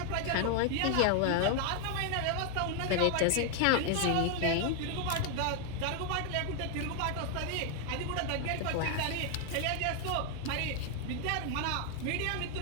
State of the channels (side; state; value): both; different; correlation 0.00